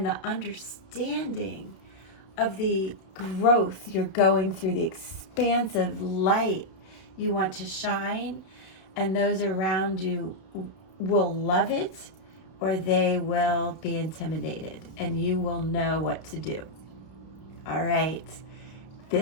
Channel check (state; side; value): late; right; 31 ms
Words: the understanding of the growth you're going through, the expansive light you want to shine, and those around you will love it or they will be intimidated, and you will know what to do. All right.